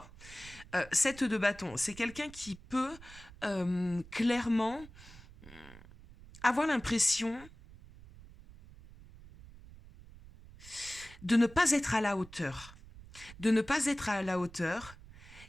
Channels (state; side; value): noise; right; rumble, 19 dB below the sound